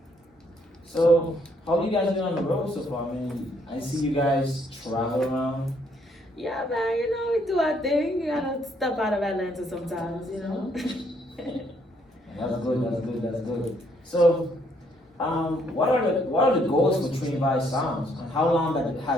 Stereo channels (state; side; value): normal; both; correlation 0.69